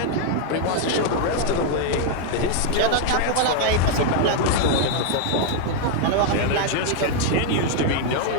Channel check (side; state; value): both; different; correlation 0.00